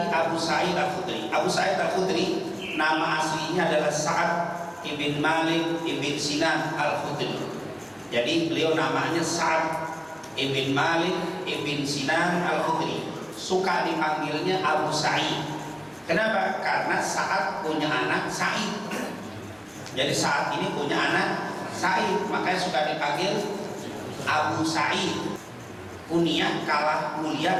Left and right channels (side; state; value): both; identical; correlation 1.00